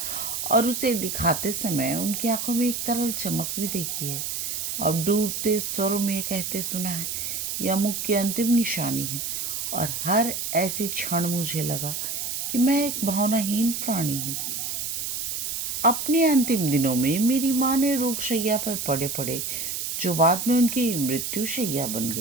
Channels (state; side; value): noise; right; hiss, 3 dB below the sound